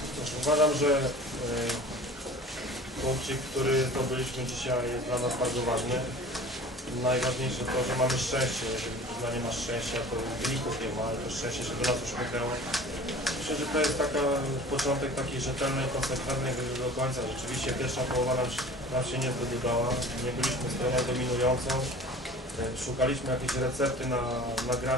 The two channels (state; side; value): normal; both; correlation 0.42